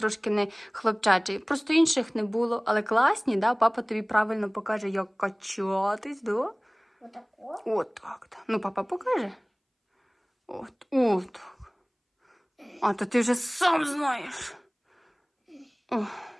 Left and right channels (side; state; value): both; identical; correlation 1.00